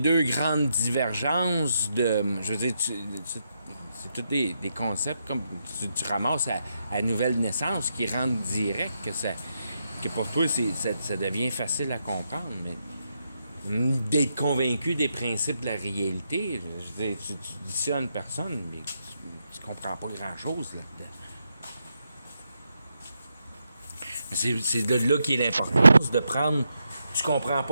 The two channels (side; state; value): both; inverted; correlation -0.82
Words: grandes divergences de... Je veux dire, c'est tous des concepts comme tu ramasses à nouvelle naissance qui rendent direct que pour toi, ça devient facile à comprendre, mais d'être convaincu des principes de la réalité, je veux dire, tu dis ça à une personne, mais tu comprends pas grand-chose là-dedans. C'est de là qu'est l'importance de prendre... Tu comprends